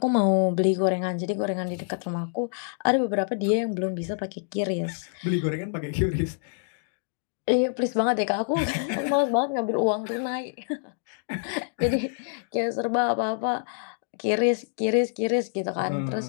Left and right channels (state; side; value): silent; right; digital silence